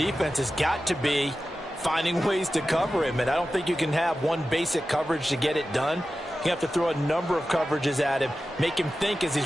has got to be finding ways to cover him. And I don't think you can have one basic coverage to get it done. You have to throw a number of coverages at him, make him think as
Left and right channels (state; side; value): normal; both; correlation 0.93